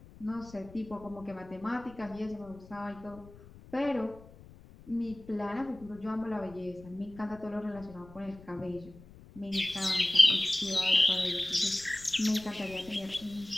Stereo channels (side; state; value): left; noise; rumble, 20 dB below the sound